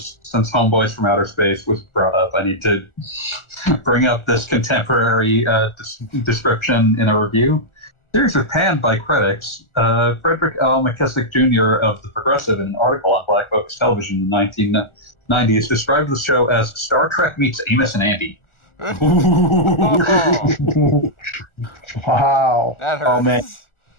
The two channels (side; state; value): right; late; 1.4 ms